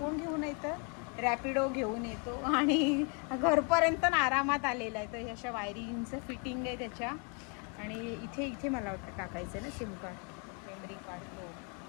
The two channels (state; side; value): quieter; right; 36.3 dB